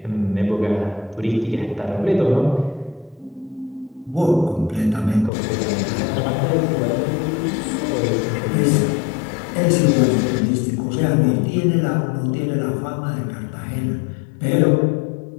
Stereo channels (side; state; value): right; drops out; at 5.3 s